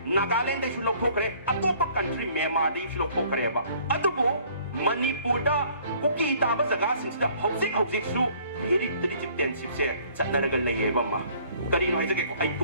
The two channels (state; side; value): inverted; both; correlation -0.57